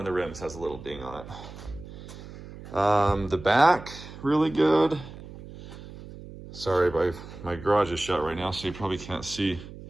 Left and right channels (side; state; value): right; noise; hum, 15 dB below the sound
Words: the rims has a little ding on it. The back, really good. Sorry, my garage is shut right now, so you probably can't see